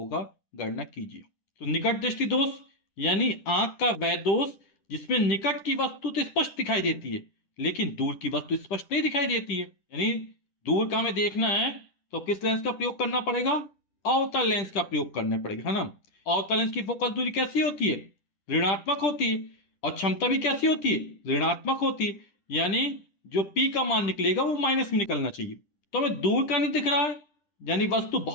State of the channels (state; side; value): late; right; 10 ms